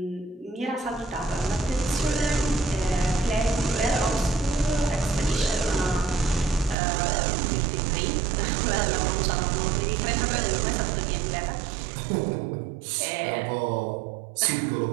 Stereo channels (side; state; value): left; drops out; at 6.8 s